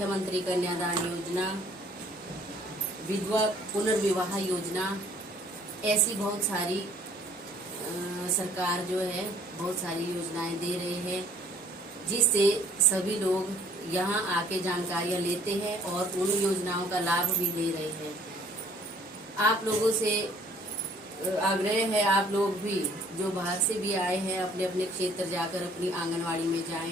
कन्यादान योजना, विधवा पुनर्विवाह योजना, ऐसी बहुत सारी सरकार जो है बहुत सारी योजनाएं दे रहे हैं, जिससे सभी लोग यहाँ आके जानकारियाँ लेते हैं और उन योजनाओं का लाभ भी ले रहे हैं। आप लोगों से आग्रह है, आप लोग भी जो बाहर से भी आए हैं अपने अपने क्षेत्र जाकर अपनी आंगनवाड़ी में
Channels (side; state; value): both; normal; correlation 0.57